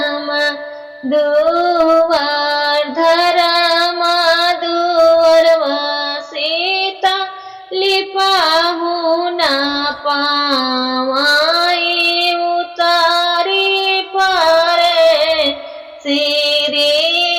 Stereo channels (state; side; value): identical; both; correlation 1.00